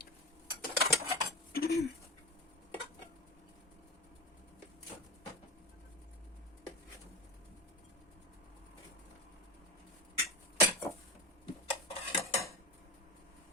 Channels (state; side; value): normal; both; correlation 0.27